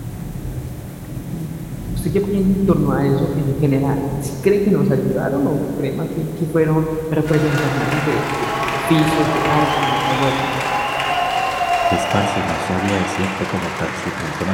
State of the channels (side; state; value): both; identical; correlation 1.00